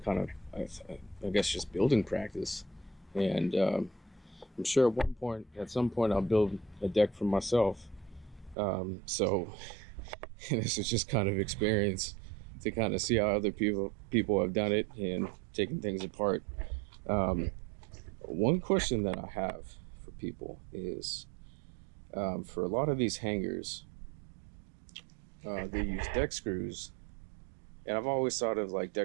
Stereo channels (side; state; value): left; drops out; at 8.6 s